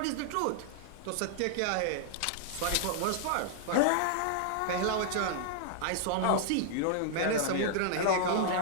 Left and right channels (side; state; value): both; different; correlation -0.01